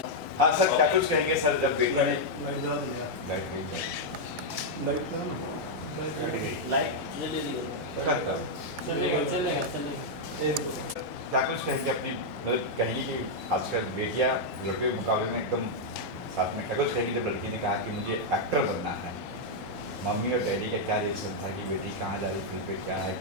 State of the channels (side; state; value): both; normal; correlation -0.03